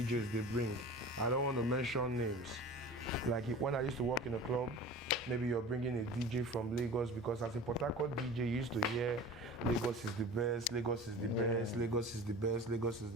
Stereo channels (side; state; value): both; normal; correlation 0.38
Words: they bring. I don't want to mention names. Like when I used to work in a club, maybe you're bringing a DJ from Lagos, because as a Port Harcourt DJ, you used to hear Lagos is the best, Lagos is the best, Lagos is the best, Lagos is